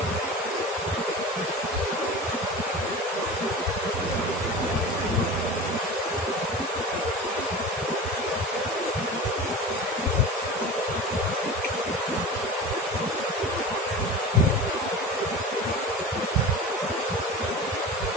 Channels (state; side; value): normal; both; correlation 0.32